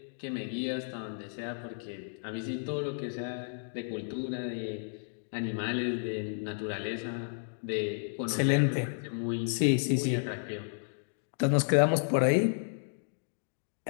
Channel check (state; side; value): silent; right; digital silence